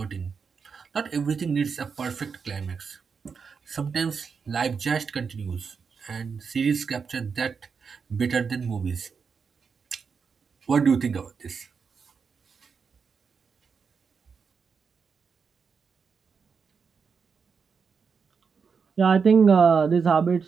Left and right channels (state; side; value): quieter; left; 5.8 dB